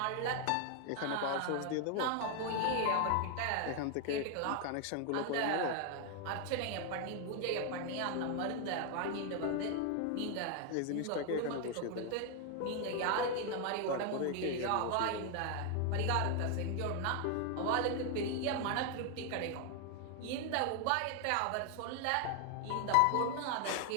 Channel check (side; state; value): both; different; correlation 0.00